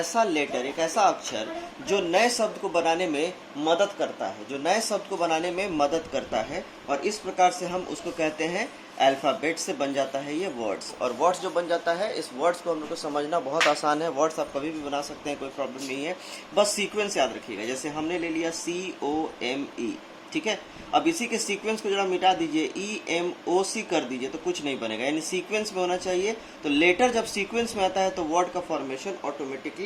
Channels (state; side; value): identical; both; correlation 1.00